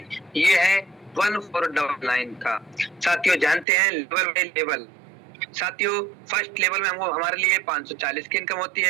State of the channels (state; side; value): drops out; left; at 3.7 s